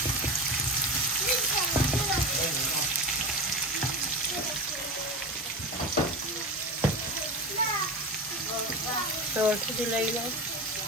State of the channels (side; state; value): both; normal; correlation 0.24